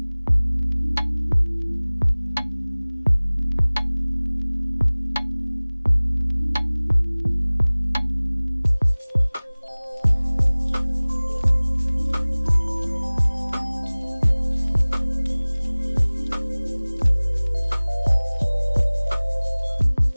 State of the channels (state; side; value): inverted; both; correlation -1.00